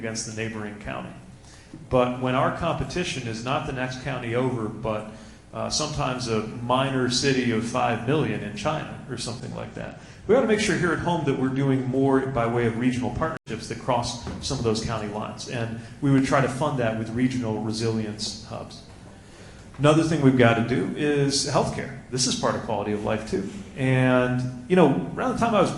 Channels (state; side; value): identical; both; correlation 1.00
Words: the neighboring county. But when our competition is not the next county over, but sometimes a minor city of 5 million in China or something like that, we ought to make sure here at home that we're doing more by way of regional partnerships that cross some of those county lines. And we would try to fund that with regional resilience hubs. Another thing we've got to do is healthcare. This is part of quality of life too. And around the time I was